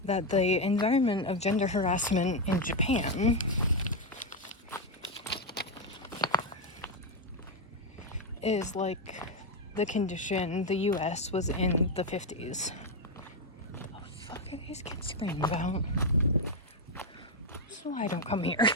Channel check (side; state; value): both; normal; correlation 0.05